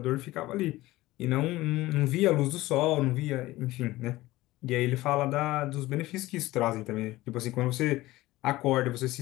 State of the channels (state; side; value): quieter; right; 18.0 dB